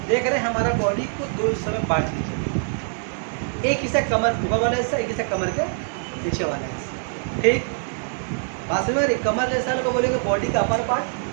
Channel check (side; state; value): left; silent; digital silence